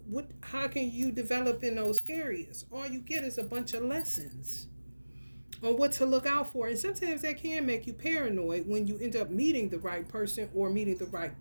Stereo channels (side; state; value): both; inverted; correlation -1.00